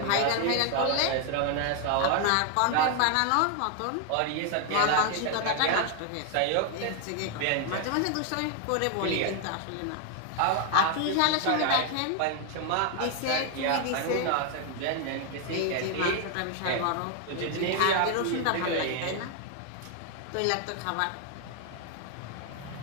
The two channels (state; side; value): different; both; correlation 0.00